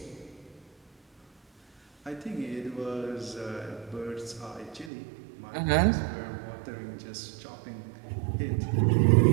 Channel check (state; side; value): drops out; left; at 4.9 s